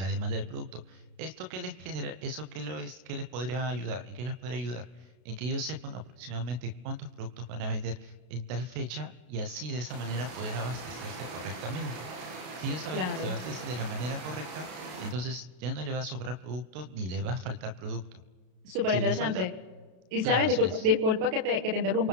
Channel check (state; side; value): late; left; 32 ms